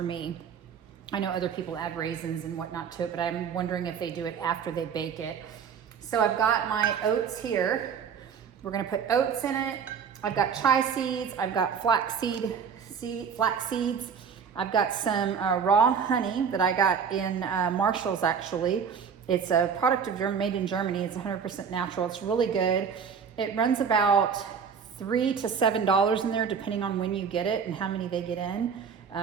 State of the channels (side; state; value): left; quieter; 6.7 dB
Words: me. I know other people add raisins and whatnot to it, but I'm wondering if they do it after they bake it. So I've got my oats here. We're gonna put oats in it. I've got chia seeds. I've got flax seeds. I've got some raw honey that I got in Marshall's actually. It's a product made in Germany. It's 100% natural. It's really good. It runs about $3 to $7 in there, depending on when you get it and how many they get in.